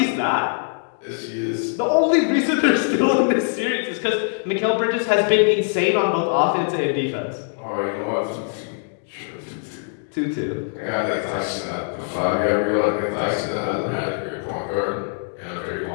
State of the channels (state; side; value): silent; right; digital silence